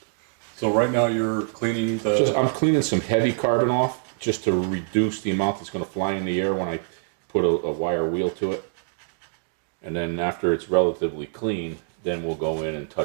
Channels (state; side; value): silent; left; digital silence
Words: So right now you're cleaning the... I'm cleaning some heavy carbon off just to reduce the amount that's going to fly in the air when I put a wire wheel to it. And then after it's relatively clean, then we'll go in and